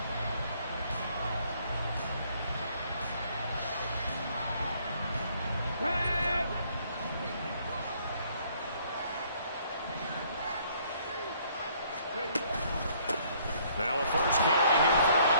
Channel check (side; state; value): both; inverted; correlation -0.63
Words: Now a first carry here for